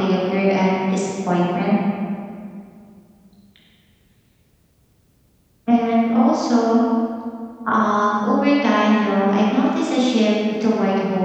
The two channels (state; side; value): identical; both; correlation 1.00